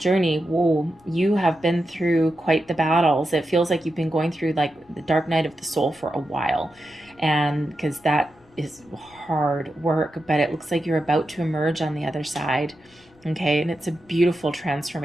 whoa, you have been through quite the battles. It feels like you've been going through like the dark night of the soul for a while, and because that is hard work, but it looks like you're about to emerge on the other side. Okay, and it's a beautiful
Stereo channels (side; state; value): left; noise; rumble, 29 dB below the sound